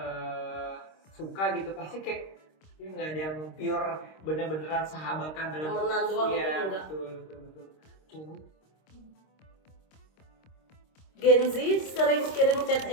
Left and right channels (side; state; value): right; late; 26 ms